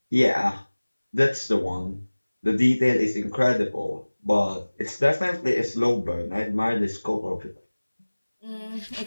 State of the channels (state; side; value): inverted; both; correlation -1.00